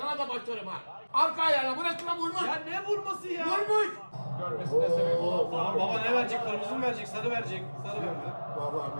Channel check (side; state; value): both; inverted; correlation -1.00